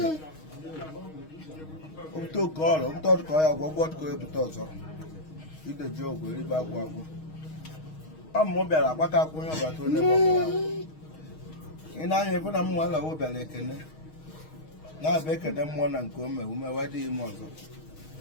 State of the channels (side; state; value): right; late; 6.4 ms